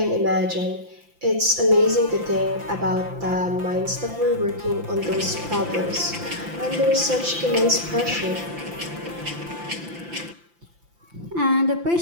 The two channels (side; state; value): left; late; 5.8 ms